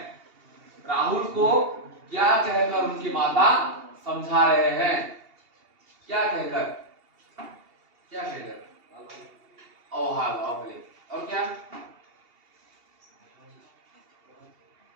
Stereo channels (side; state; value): left; late; 2.8 ms